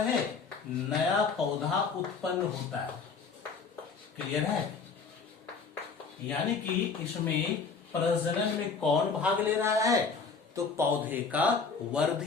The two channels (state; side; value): quieter; right; 5.0 dB